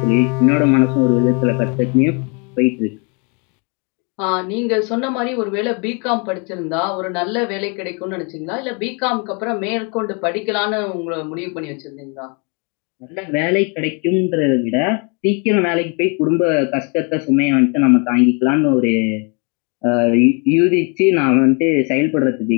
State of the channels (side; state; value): right; quieter; 34.5 dB